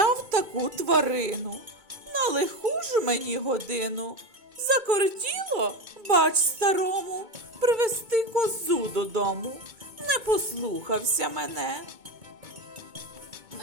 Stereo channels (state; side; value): late; left; 2.2 ms